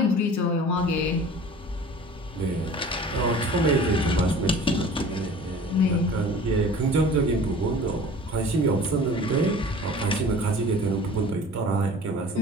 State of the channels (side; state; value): both; normal; correlation 0.43